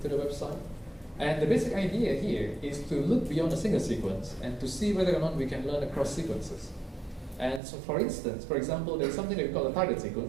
the website. And the basic idea here is to look beyond a single sequence and to see whether or not we can learn across sequences. And so for instance, for example, there's something that we call a target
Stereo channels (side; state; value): left; drops out; at 7.6 s